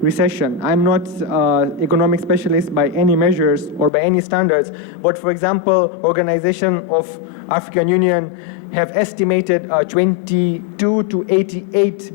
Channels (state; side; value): drops out; right; at 3.9 s